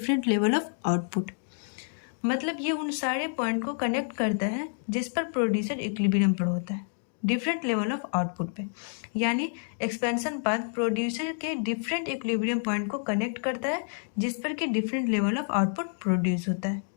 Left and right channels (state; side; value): silent; right; 59 dB below the other